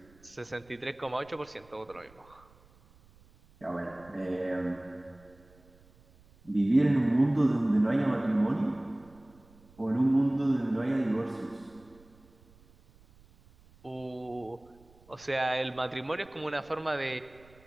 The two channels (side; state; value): right; noise; rumble, 27 dB below the sound